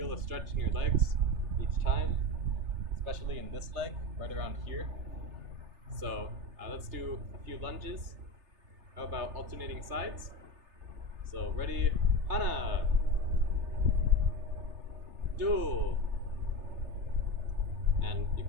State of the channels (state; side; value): late; left; 3.3 ms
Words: the stretch in your legs each time, especially in this leg, right around here. So let's do a few lunges. How about alternating sides? So ready, hana, do. And you